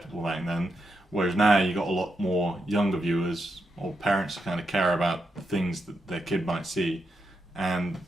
back then. Whereas now you got a lot more younger viewers or parents who kind of care about the things that their kid might see, and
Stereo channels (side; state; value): both; normal; correlation 0.84